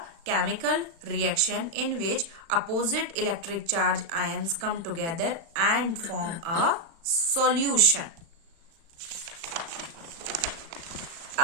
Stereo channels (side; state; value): left; late; 36 ms